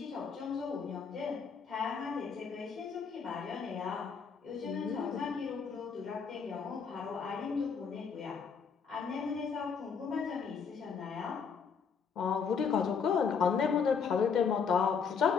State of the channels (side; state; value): right; quieter; 6.1 dB